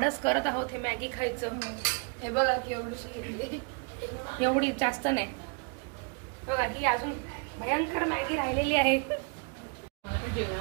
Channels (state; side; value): quieter; left; 35.5 dB